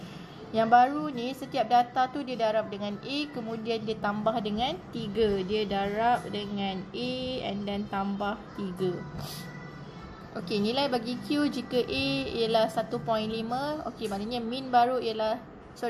Yang baru ni setiap data tu dia darab dengan A, kemudian dia tambah dengan 3. Dia darab dengan A and then tambah 3. Okey, nilai bagi Q jika A ialah 1.5. Okey, maknanya mean baru ialah,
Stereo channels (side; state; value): both; identical; correlation 1.00